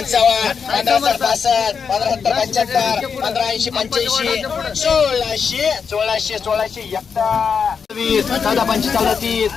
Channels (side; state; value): right; quieter; 6.2 dB